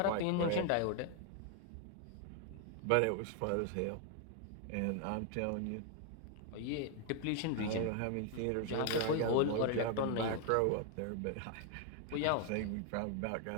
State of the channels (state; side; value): different; both; correlation 0.00